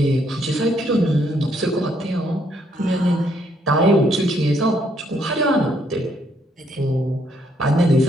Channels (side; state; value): both; normal; correlation 0.71